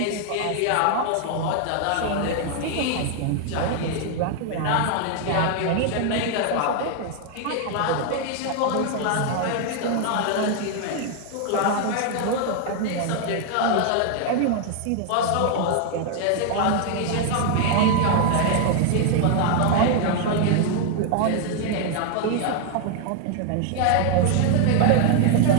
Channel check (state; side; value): different; both; correlation 0.00